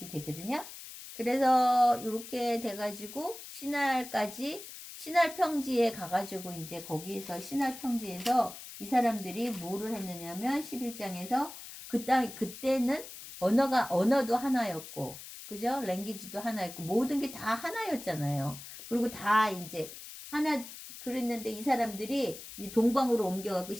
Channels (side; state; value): left; noise; hiss, 13 dB below the sound